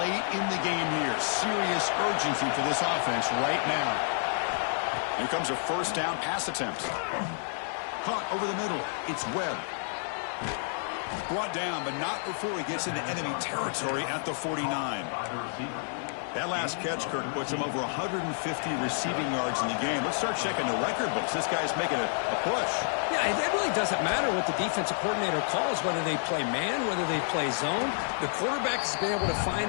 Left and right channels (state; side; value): silent; right; 58 dB below the other